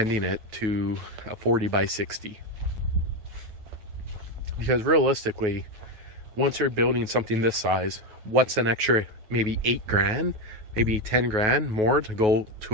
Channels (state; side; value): late; left; 9.4 ms